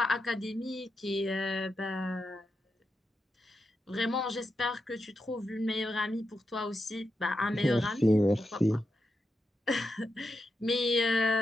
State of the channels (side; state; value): both; normal; correlation 0.87